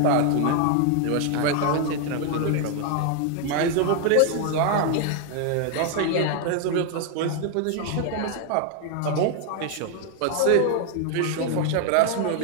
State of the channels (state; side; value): different; both; correlation 0.00